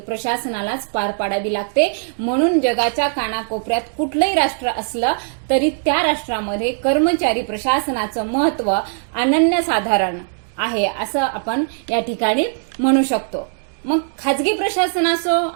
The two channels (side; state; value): left; silent; digital silence